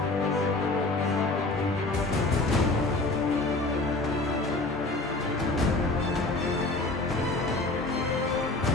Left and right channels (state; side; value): quieter; right; 3.1 dB